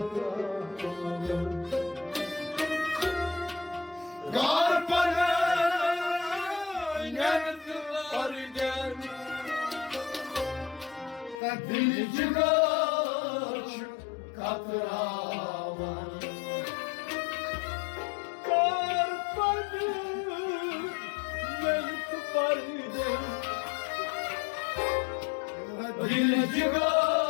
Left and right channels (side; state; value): right; drops out; at 11.4 s